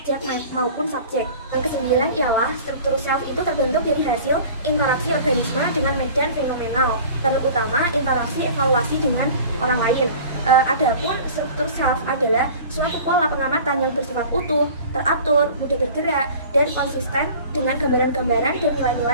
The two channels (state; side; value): inverted; both; correlation -0.43